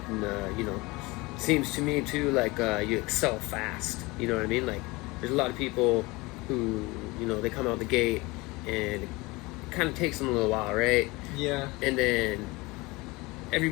and seems to me too like you excel fast. You know what I mean? Like, there's a lot of people who they come out the gate and it kind of takes them a little while, right? Yeah. And then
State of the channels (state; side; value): quieter; right; 23.3 dB